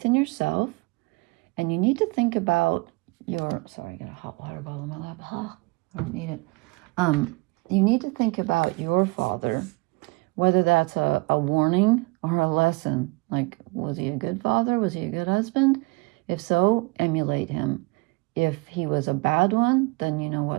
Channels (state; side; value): quieter; left; 26.5 dB